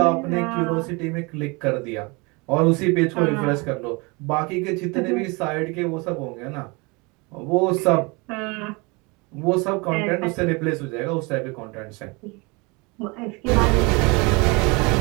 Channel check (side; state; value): left; quieter; 27.8 dB